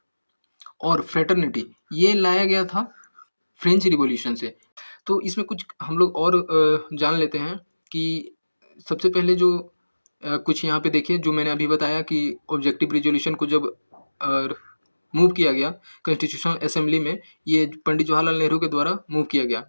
और फ्रेटर्निटी, ये लाया गया था फ्रेंच रिवॉल्यूशन से। तो इसमें कुछ हम लोग और जान लेते हैं कि सबसे पहले जो कुछ यहाँ पे देखिए, जो मैंने अभी बताया कि ऑब्जेक्टिव रिज़ॉल्यूशन को जब अ, मूव किया गया कॉन्स्टिट्यूशनल असेंबली में, ये पंडित जवाहरलाल नेहरू के द्वारा मूव किया गया,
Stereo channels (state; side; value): inverted; both; correlation -1.00